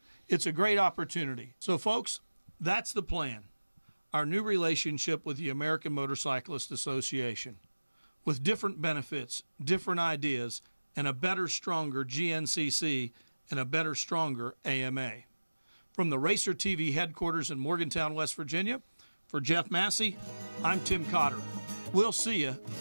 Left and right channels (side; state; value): both; inverted; correlation -1.00